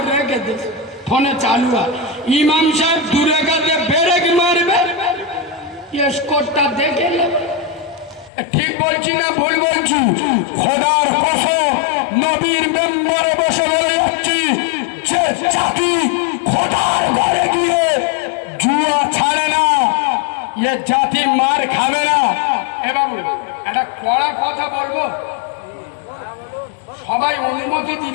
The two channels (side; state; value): right; drops out; at 8.3 s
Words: রেখে দিয়েছে, ফোনে চালু আছে। ইমাম সাহেব দূরে কাছে ব্রেক মারবে, স্কোরটা দেখে নেবে। ঠিক বলছি না ভুল বলছি? খোদার কসম নবীর মেম্বারে বসে বলে যাচ্ছি, যে জাতি খোদার ঘরে গিয়ে জুয়া ছাড়ে না, এ জাতি মার খাবে না। এ বাবু একটা কড়া কথা বলবো, সবাই অনুমতি